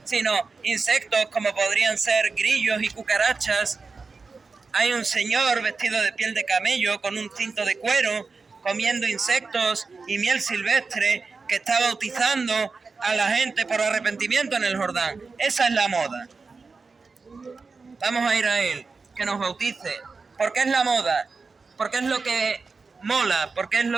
sino insectos como podrían ser grillos y cucarachas. Hay un señor vestido de piel de camello con un cinto de cuero, comiendo insectos y miel silvestre, que está bautizando a la gente por arrepentimiento en el Jordán. Esa es la moda. Vamos a ir a él, que nos bautice. ¿Por qué es la moda? Porque es lo que mola, porque es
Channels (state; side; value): quieter; left; 4.4 dB